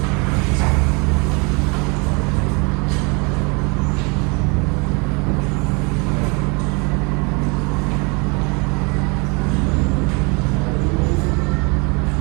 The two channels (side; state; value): left; quieter; 30.6 dB